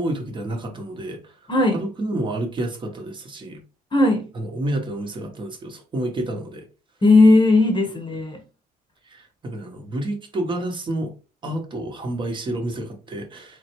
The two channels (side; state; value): both; normal; correlation 0.81